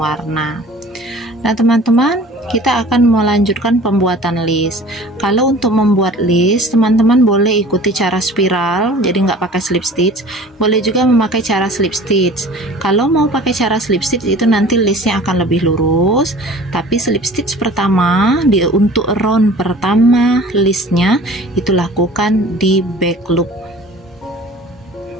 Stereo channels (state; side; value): normal; both; correlation 0.45